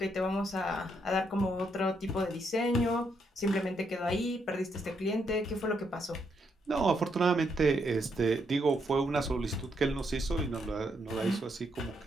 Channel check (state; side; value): normal; both; correlation 0.77